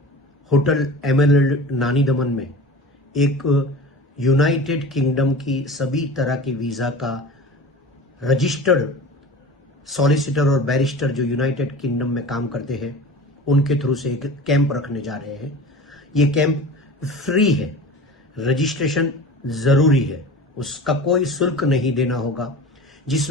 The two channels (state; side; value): normal; both; correlation 0.36